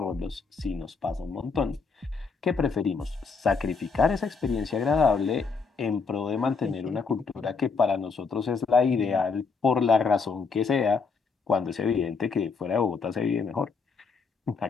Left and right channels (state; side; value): quieter; right; 5.0 dB